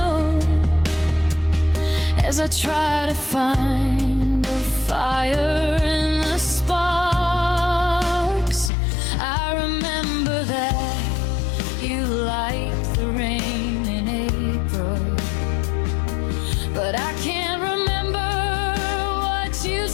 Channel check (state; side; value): drops out; right; at 8.7 s